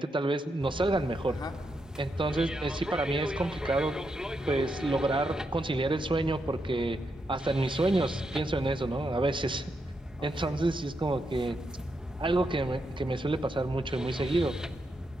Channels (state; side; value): normal; both; correlation 0.82